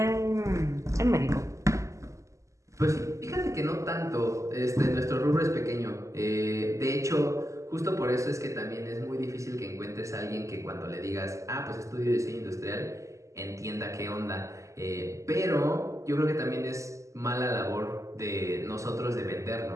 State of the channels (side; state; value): left; late; 0.15 ms